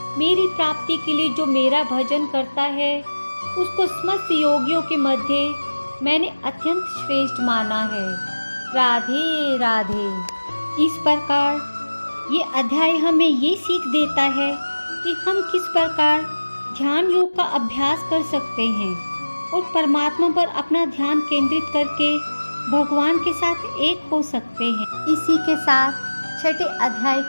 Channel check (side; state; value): both; inverted; correlation -1.00